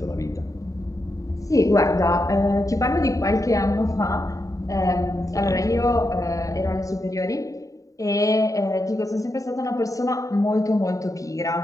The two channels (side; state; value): right; late; 0.16 ms